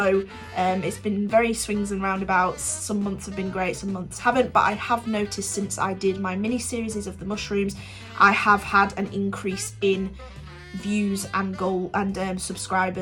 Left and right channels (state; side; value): identical; both; correlation 1.00